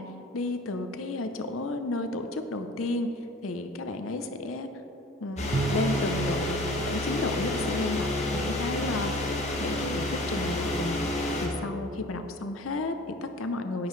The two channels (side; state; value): both; normal; correlation 0.45